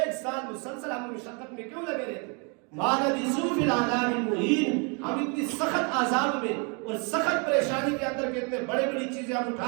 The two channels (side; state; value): left; quieter; 34.5 dB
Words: سال مسلسل ہم مشقت میں کیوں لگے رہتے. ما لبثوا فی العذاب المہین، ہم اتنی سخت عذاب میں اور سخت پریشانی کے اندر کتنے بڑی چیزیں ہم